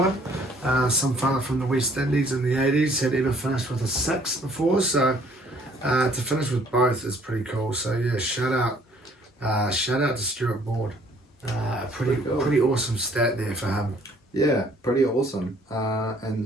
some fella from the West Indies in the 80s, had ever finished with a 6 before, so to finish with both is pretty cool. So yeah, shout out to Stuart Broad. Pretty awesome stat there for him. Yeah, pretty awesome.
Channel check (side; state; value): both; normal; correlation 0.60